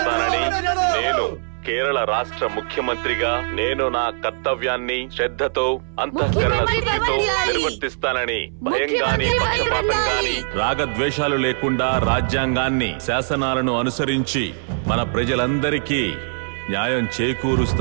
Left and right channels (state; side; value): silent; left; 60 dB below the other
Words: నేను కేరళ రాష్ట్ర ముఖ్యమంత్రిగా నేను నా కర్తవ్యాన్ని శ్రద్ధతో, అంతఃకరణ శుద్ధితో నిర్వర్తిస్తానని, భయంగాని పక్షపాతంగాని రాగద్వేషాలు లేకుండా రాజ్యాంగాన్ని, శాసనాలను అనుసరించి మన ప్రజలందరికీ న్యాయం